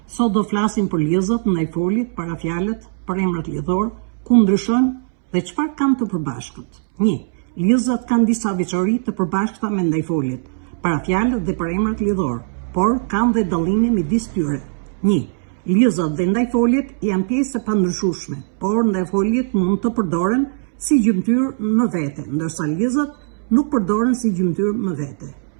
Sot do flasim për lidhjet ndaj folit, parafjalët, përemrat lidhor, ku ndryshojnë dhe çfarë kanë të përbashkët. 1. Lidhjet kanë disa veçori të përbashkëta me ndajfolit, parafjalët dhe përemrat lidhor, por kanë dhe dallime midis tyre. 1. Lidhjet dhe ndajfolit janë pjesë e pandryshueshme, por ndajfolit mund të përdoren si gjymtyr në vete, ndërsa lidhjet nuk përdoren si gjymtyr në vete.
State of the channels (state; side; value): silent; left; 66 dB below the other